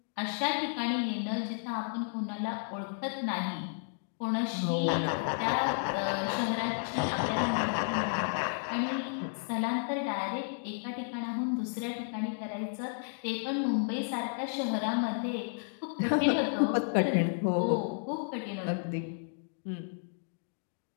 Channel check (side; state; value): right; silent; digital silence